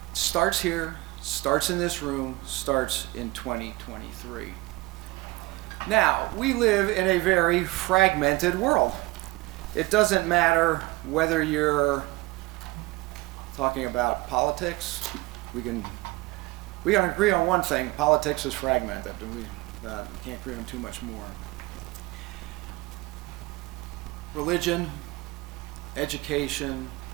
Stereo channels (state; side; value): quieter; left; 21.9 dB